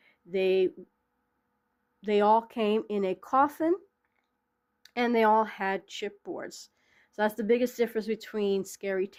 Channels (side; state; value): both; identical; correlation 1.00